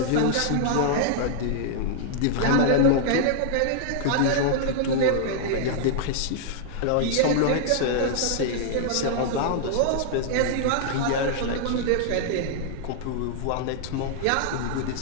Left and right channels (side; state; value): both; different; correlation -0.01